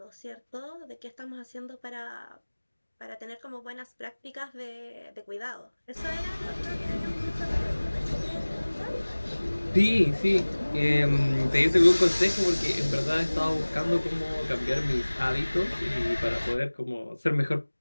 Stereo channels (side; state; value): both; inverted; correlation -1.00